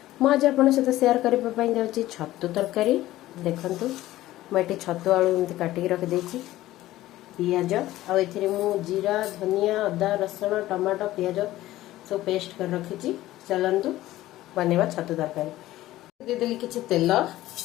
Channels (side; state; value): right; quieter; 15.6 dB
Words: मु आज आपण सहित शेयर करबा पई जाउछि छत्तू तरकारी। देखंतु मु एटी छत्तू आलू एमति काटी रख देछि, पियाज आ एथिरे मु जीरा, धनिया, अदा, रसुण, टमाटो, पियाज सब पेस्ट कर रखिछि। चलंतु बनेवा छत्तू तरकारी। दे देली किछि तेल,